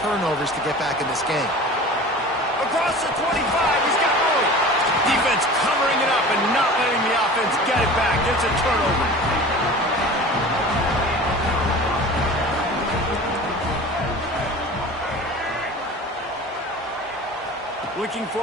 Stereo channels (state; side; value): normal; both; correlation 0.38